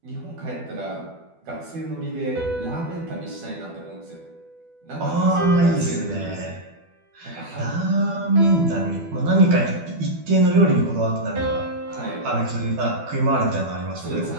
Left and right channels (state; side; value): late; left; 12 ms